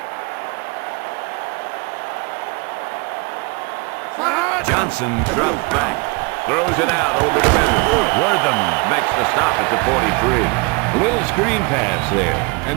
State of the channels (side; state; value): left; quieter; 29.5 dB